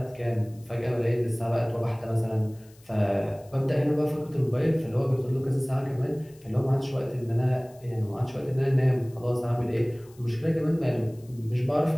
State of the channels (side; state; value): left; noise; hiss, 28 dB below the sound